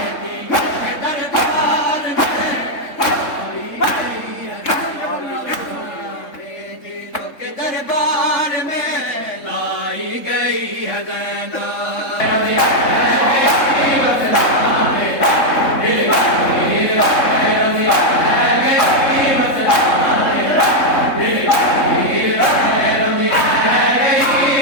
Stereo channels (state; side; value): late; right; 3.7 ms